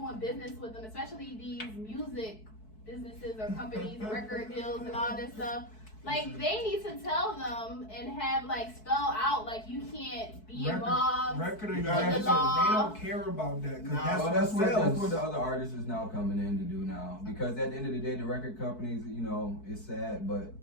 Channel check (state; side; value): late; right; 4.6 ms